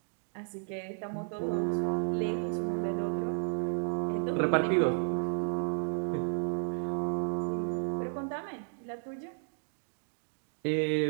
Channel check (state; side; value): silent; left; digital silence